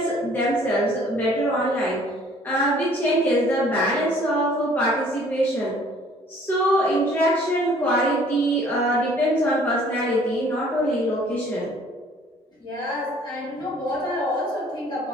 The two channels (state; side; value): normal; both; correlation 0.56